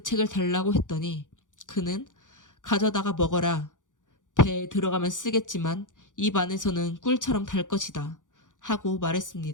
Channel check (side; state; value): right; late; 0.87 ms